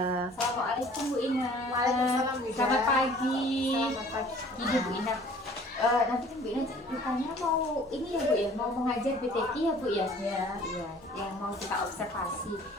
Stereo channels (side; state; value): both; normal; correlation 0.51